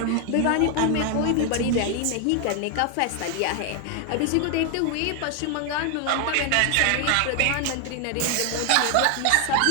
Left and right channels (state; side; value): different; both; correlation 0.00